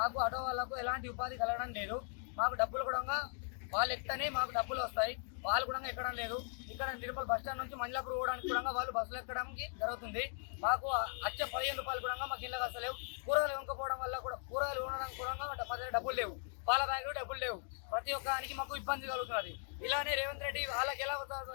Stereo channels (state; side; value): silent; right; 52 dB below the other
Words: ఆటో వాళ్ళకు ఎలాంటి ఉపాధి కలగడం లేదు. మాకు డబ్బులు కూడా వాళ్ళు ఎక్కనే మాకు డబ్బులు వస్తాయి, వాళ్ళు కూడా ఎక్కడం లేదు. ఇక్కడ నిర్మల్ బస్ స్టాండ్ నుంచి మంజలాపూర్ పోవడానికి కూడా వాళ్ళు బస్సులు ఎక్కడానికి జరుగుతుంది. మాకు వచ్చే 15 రూపాయలు కూడా మాకు ఇళ్ళకి వస్తలేవు. కూరగాయలు వంకపోవడం వల్ల కూడా కూరగాయలు ఉండడానికి కూడా మా దగ్గర డబ్బులు లేవు, పాల బ్యాగులు డబ్బులు లేవు. ప్రతి ఒక్కరికి మాకు ఇబ్బంది కలుగుతున్నది. ఇలానే రేవంత్ రెడ్డి వాళ్ళకి ఎలా